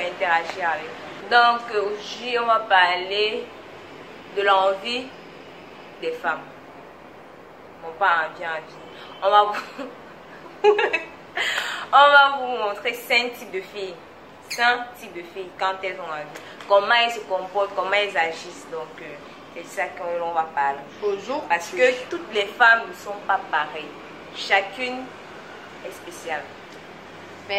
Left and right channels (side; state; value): both; identical; correlation 1.00